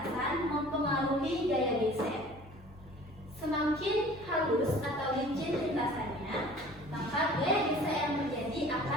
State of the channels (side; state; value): both; normal; correlation 0.47